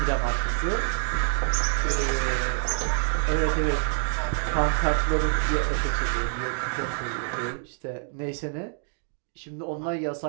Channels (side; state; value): left; silent; digital silence